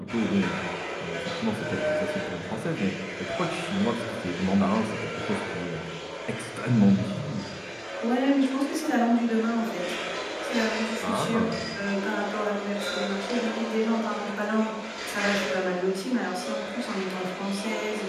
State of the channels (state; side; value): identical; both; correlation 1.00